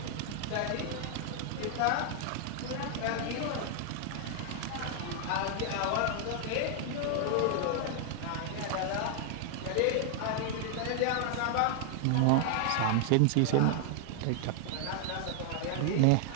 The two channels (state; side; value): different; both; correlation 0.00